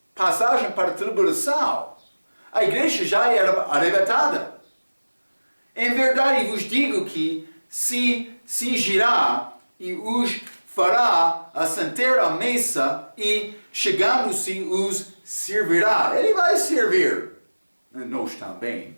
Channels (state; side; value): inverted; both; correlation -1.00